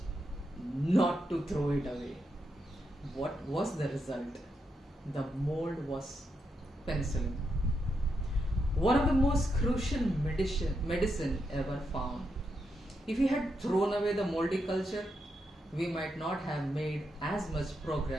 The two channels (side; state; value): both; normal; correlation 0.83